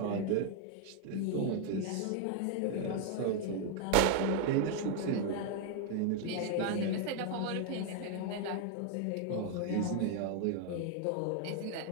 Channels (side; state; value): both; different; correlation 0.00